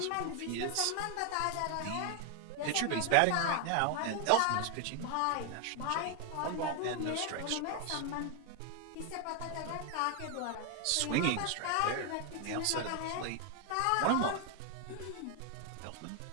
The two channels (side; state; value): both; different; correlation 0.00